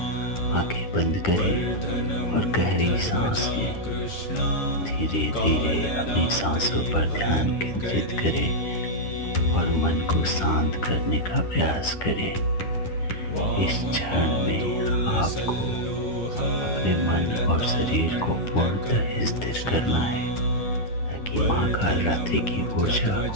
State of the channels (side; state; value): right; late; 10 ms